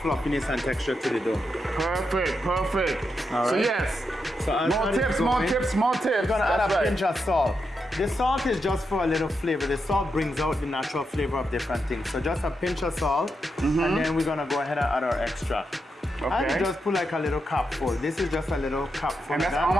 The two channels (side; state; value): both; normal; correlation 0.85